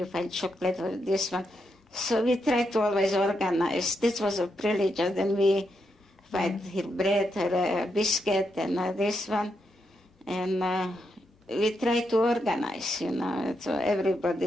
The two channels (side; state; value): both; normal; correlation 0.82